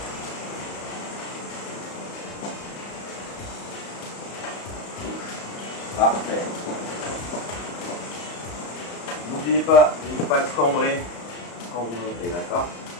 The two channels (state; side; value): late; right; 34 ms